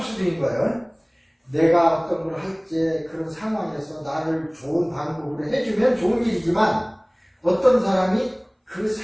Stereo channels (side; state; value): both; identical; correlation 1.00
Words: 수도 있는 거예요. 내가 어떤 걸 할 때 그런 상황에서 나를 좋은 방법으로 해주면 좋은 일이지만 어떤 사람이 그